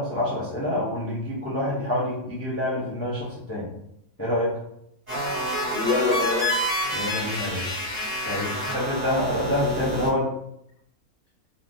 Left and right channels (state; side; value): normal; both; correlation -0.06